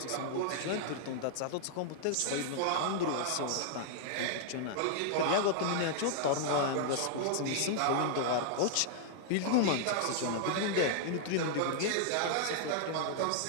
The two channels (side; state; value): both; different; correlation -0.01